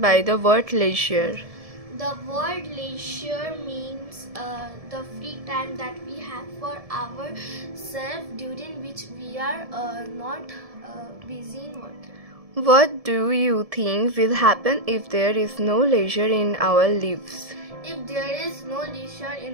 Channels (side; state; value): left; late; 1.7 ms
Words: by the word leisure? The word leisure means the free time that we have for ourselves during which we are not busy in work. What do you think will happen if there is no leisure in our lives? If there is no leisure in